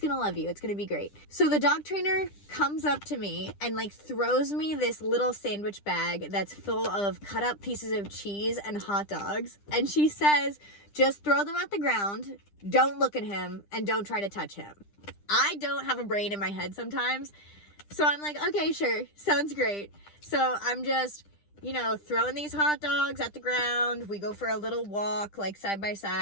love you, it's gonna be great. So the dog trainer comes up to me and like throws me this little sandwich bag that's full of cut up pieces of cheese and hot dogs, and she says, just throw them at the ground, don't look at him, and don't try to touch him. I don't have a brain in my head sometimes. So I'm like, okay, sure, sounds great. So I'm just, throwing these hot dogs at the ground. We go for a little walk, like side by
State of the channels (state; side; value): late; right; 10 ms